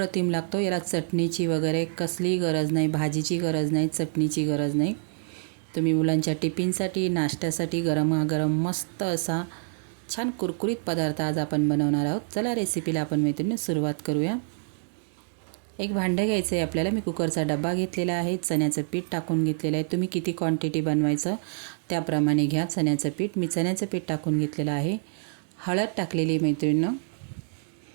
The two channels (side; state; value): left; silent; digital silence